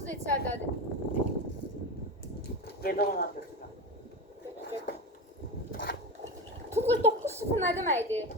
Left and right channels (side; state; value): both; normal; correlation 0.21